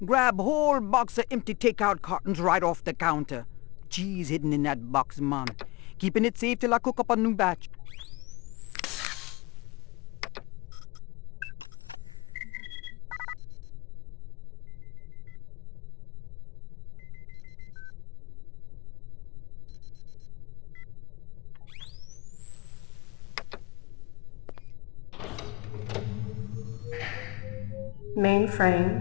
grab whole box of empty takeout cartons right off the counter. Cheese hidden in that box, man. Keeping it safe till I cook up a new batch.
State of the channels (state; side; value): quieter; right; 24.1 dB